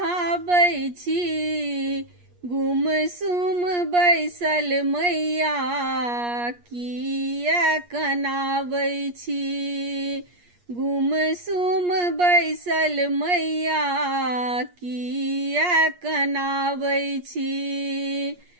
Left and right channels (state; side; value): late; left; 8.4 ms